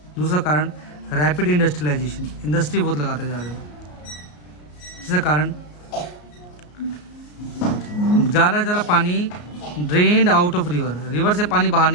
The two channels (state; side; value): late; right; 33 ms